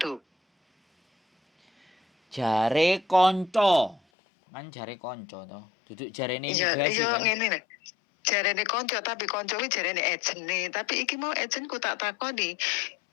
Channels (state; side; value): drops out; right; at 4.0 s